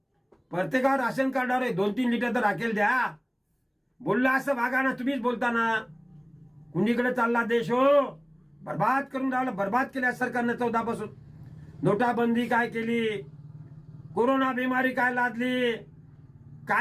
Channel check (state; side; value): identical; both; correlation 1.00